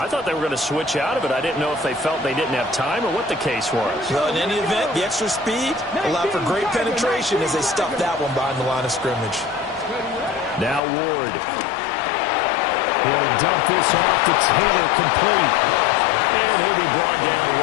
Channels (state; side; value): drops out; right; at 10.8 s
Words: thought they were going to switch out of it. I didn't know if they felt they didn't have time or what the case was. Well, in any event, the extra speed allowed for great penetration as they stuffed that one behind the line of scrimmage. Now Ward. He'll dump this off to Taylor, complete. And he'll be brought down